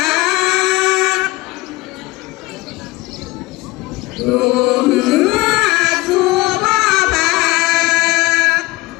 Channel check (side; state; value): right; quieter; 21.3 dB